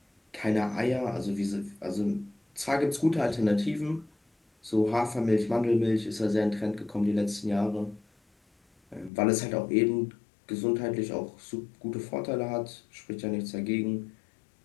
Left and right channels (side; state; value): right; drops out; at 9.1 s